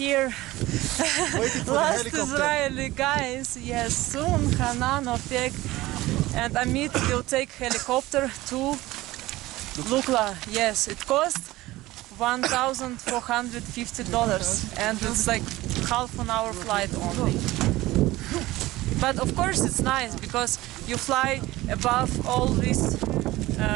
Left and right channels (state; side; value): quieter; left; 18.0 dB